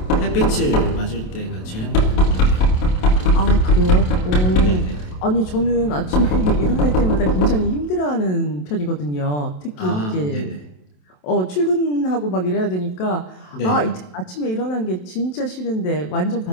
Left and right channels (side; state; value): right; late; 27 ms